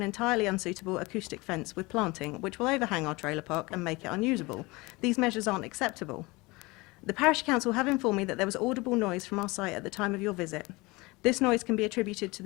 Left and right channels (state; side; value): quieter; right; 23.6 dB